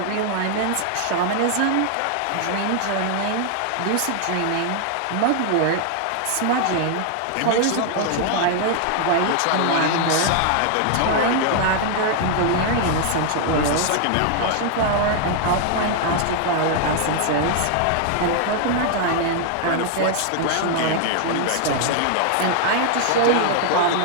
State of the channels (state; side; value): different; both; correlation 0.00